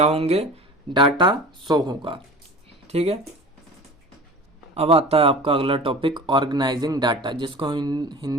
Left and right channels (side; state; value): both; normal; correlation 0.38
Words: होंगे, डाटा शो होगा। ठीक है, अब आता है आपका अगला टॉपिक ऑर्गेनाइजिंग डाटा, जिसको